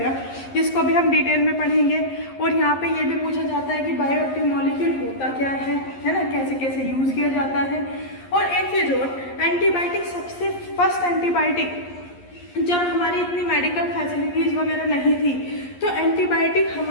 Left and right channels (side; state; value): right; late; 11 ms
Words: जिसको भी हम डिटेल में पढ़ेंगे. और यहाँ पे ये भी पूछा जाता है कि बायोएक्टिव मॉलिक्यूल होता क्या है ना, कैसे कैसे यूज़ किया जाता है. और एक चीज़ और, एंटीबायोटिक सबसे फर्स्ट एंटीबायोटिक, जब हमारी इतनी मेडिकल फैसिलिटीज़ वगैरह नहीं थी तो एंटीबायोटिक